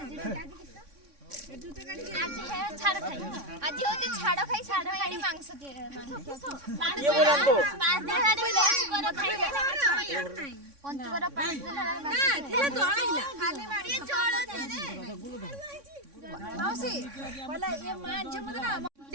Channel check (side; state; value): left; late; 3.6 ms